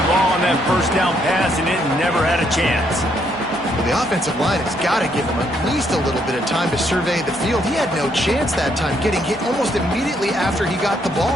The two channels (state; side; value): normal; both; correlation 0.72